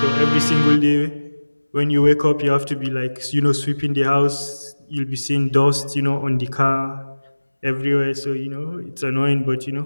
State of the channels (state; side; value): inverted; both; correlation -1.00